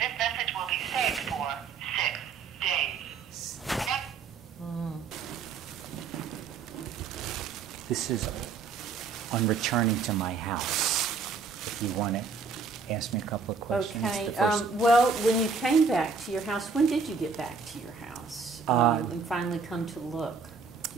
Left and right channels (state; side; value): quieter; left; 5.1 dB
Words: message will be saved for 6 days. This is on returning to my house. If you want to ask me a couple of questions. Okay. Well, when you came back to your house, when did you get back to your house and finally come to look?